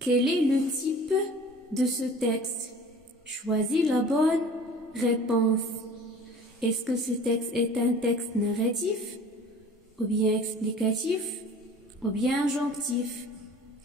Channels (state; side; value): normal; both; correlation 0.45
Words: est le type de ce texte? Choisis la bonne réponse. Est-ce que ce texte est un texte narratif, ou bien explicatif, ou bien injonctif?